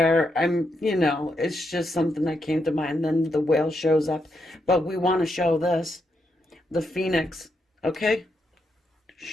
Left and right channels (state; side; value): normal; both; correlation 0.81